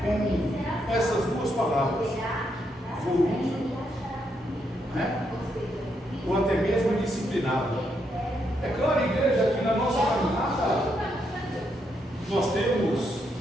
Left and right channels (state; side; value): normal; both; correlation 0.79